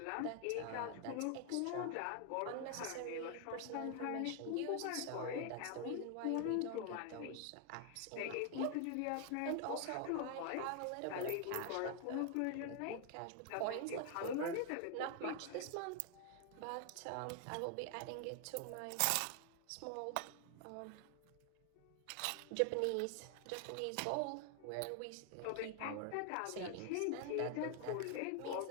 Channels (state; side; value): different; both; correlation 0.00